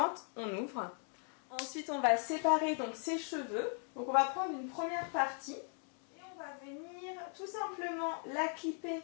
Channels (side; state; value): right; quieter; 39.3 dB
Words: on ouvre. Ensuite on va séparer donc ses cheveux. Donc on va prendre une première partie et on va venir tout simplement la clipper